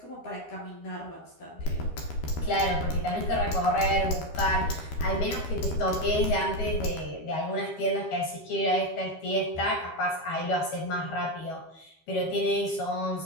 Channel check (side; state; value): right; late; 13 ms